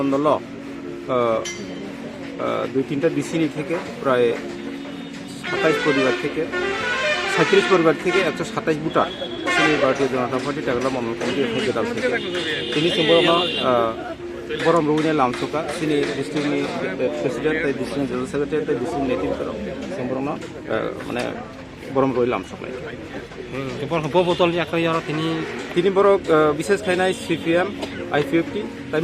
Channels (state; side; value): identical; both; correlation 1.00